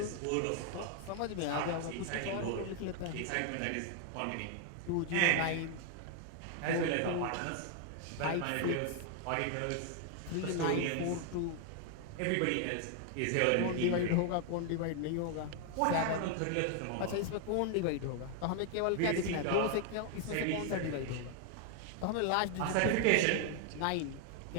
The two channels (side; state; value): both; different; correlation 0.00